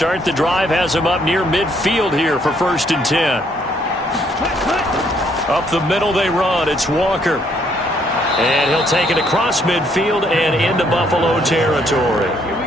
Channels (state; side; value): normal; both; correlation 0.68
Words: the drive has him up near midfield here for 1st and 10. Up the middle they run. It's Walker. And he'll take it across midfield and into Buffalo territory.